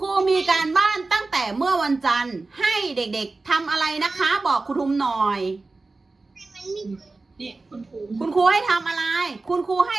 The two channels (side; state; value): left; quieter; 3.5 dB